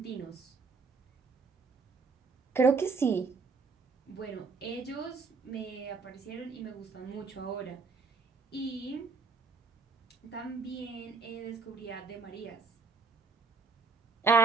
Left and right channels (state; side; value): quieter; left; 4.5 dB